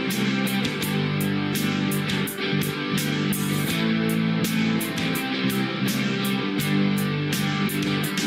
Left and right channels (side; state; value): both; identical; correlation 1.00